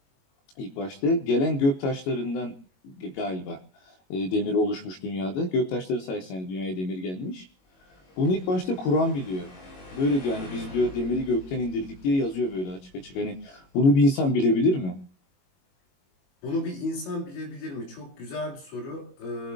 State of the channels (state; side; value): late; right; 22 ms